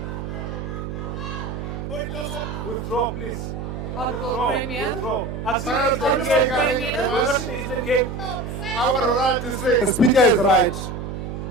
Withdraw, please. Honourable Premier. Withdraw. Our right to say the Speaker is right.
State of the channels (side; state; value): right; noise; hum, 6 dB below the sound